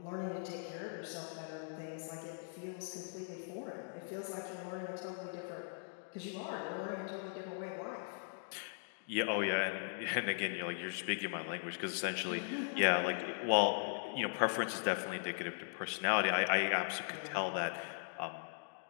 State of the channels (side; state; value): right; silent; digital silence